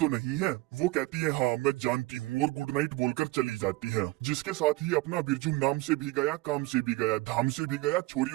नहीं है। वो कहती है हाँ मैं जानती हूँ, और गुड नाइट बोलकर चली जाती है। जिसके साथ ही अपना बिरजू नाम से भी गया, काम से भी गया, धाम से भी गया,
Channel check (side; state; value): left; quieter; 20.7 dB